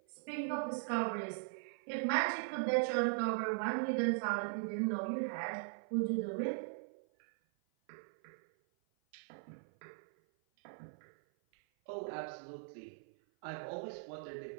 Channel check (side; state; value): left; silent; 51 dB below the other